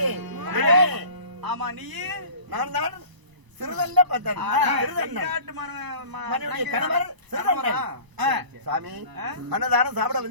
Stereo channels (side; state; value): left; late; 1.0 ms